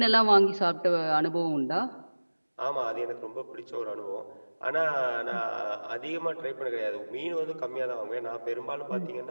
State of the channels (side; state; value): both; inverted; correlation -1.00